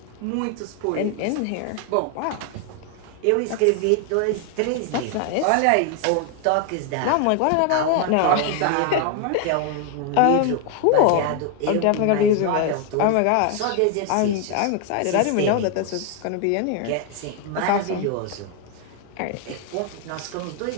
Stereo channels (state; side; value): different; both; correlation 0.01